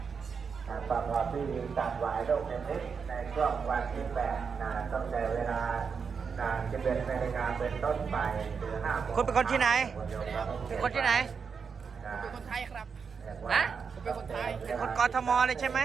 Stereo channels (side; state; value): left; quieter; 5.9 dB